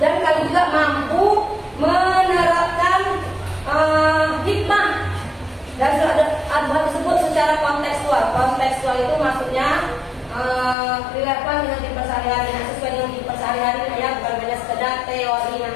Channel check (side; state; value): right; drops out; at 10.8 s